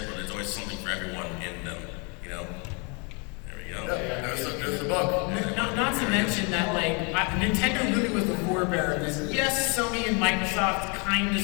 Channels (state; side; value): quieter; right; 33.1 dB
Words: but there's always something for everyone in them, There we go. Yeah, there's the book. Not to mention that, like, Nintendo really was the forebearer of this. Yes, Sony and Microsoft kind of